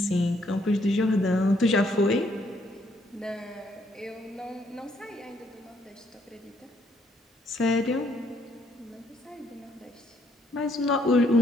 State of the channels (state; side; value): normal; both; correlation 0.70